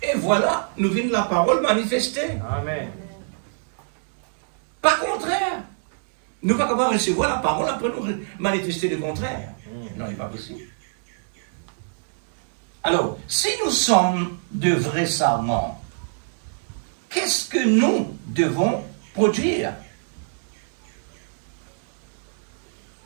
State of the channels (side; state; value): left; silent; digital silence